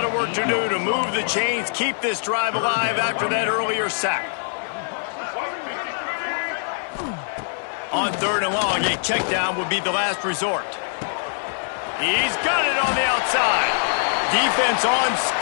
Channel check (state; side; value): silent; right; 61 dB below the other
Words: of work to do to move the chains, keep this drive alive after that earlier sack. On 3rd and long, a check down would be the last resort. He's got it on the outside. Defense on